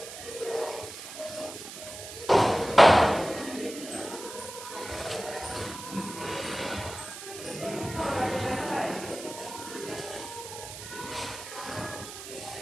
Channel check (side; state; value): right; noise; hiss, 11 dB below the sound